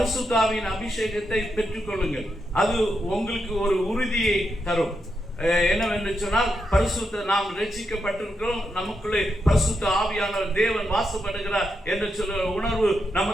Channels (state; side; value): normal; both; correlation 0.84